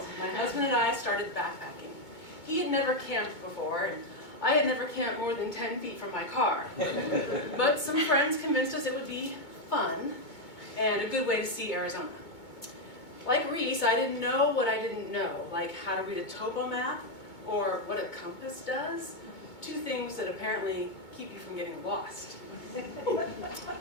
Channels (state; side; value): late; right; 2.2 ms